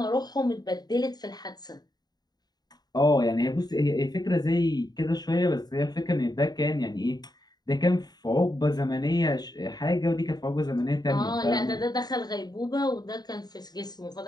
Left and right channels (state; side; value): late; right; 0.20 ms